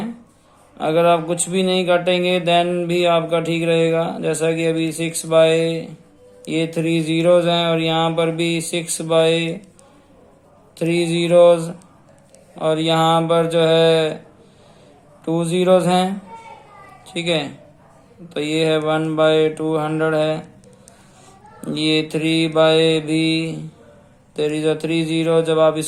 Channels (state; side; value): identical; both; correlation 1.00